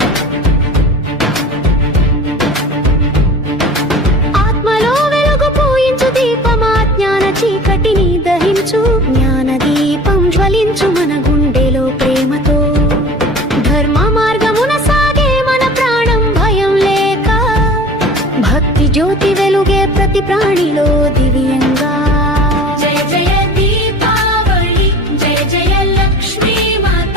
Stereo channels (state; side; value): normal; both; correlation 0.41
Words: ఆత్మలో వెలుగు పూయించు దీపమా జ్ఞాన చీకటిని దహించు జ్ఞాన దీపం జ్వలించు మన గుండెలో ప్రేమతో ధర్మ మార్గమున సాగే మన ప్రాణం భయం లేక భక్తి జ్యోతి వెలుగే ప్రతి ప్రాణిలో దివ్యంగా జయ జయ దీపావళి జయ జయ లక్ష్మీ మాత